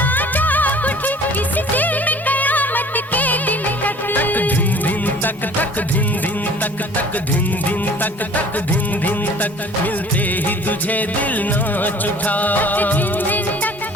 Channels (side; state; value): both; normal; correlation 0.49